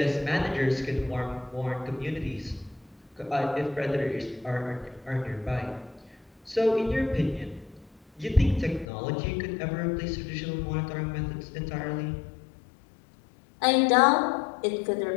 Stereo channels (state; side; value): drops out; right; at 8.8 s